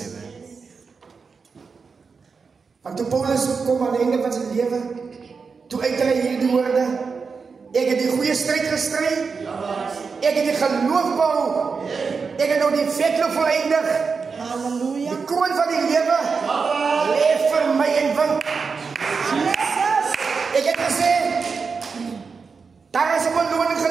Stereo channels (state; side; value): quieter; left; 5.1 dB